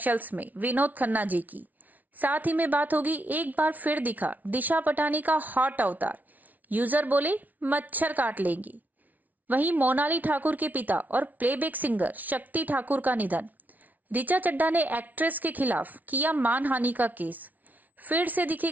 में विनोद खन्ना जी की। साथ ही में बात होगी एक बार फिर दिखा दिशा पटानी का हॉट अवतार। यूजर बोले मच्छर काट लेंगी। वहीं मोनाली ठाकुर के पिता और प्लेबैक सिंगर शक्ति ठाकुर का निधन। ऋचा चड्ढा ने एक्ट्रेस के खिलाफ किया मानहानि का केस। फिर से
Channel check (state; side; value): late; left; 0.077 ms